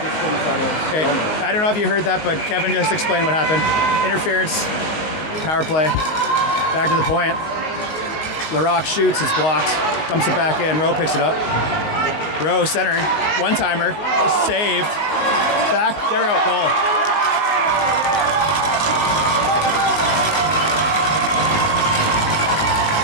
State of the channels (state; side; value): late; right; 19 ms